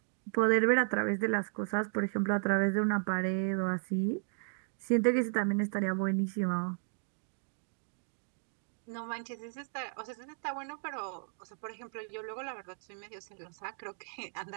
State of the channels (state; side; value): silent; left; 55 dB below the other